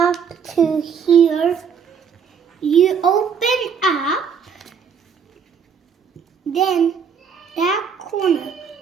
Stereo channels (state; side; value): quieter; left; 6.8 dB